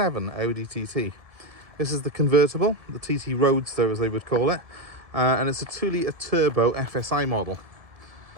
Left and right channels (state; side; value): late; left; 1.7 ms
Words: Audi TT. This is the convertible, the TT Roaster as they would call it, and it's a 2-litre turbo FSI model.